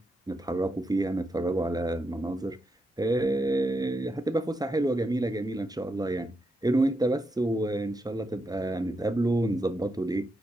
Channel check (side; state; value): both; normal; correlation 0.84